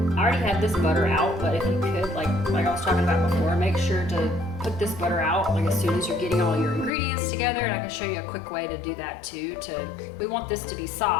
I already had this butter out, but if you could, like I was talking about before, make sure to put this butter out like as soon as you're getting all your ingredients together, and I can show you a quick way to do that too. We want this to be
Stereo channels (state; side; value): drops out; right; at 6.9 s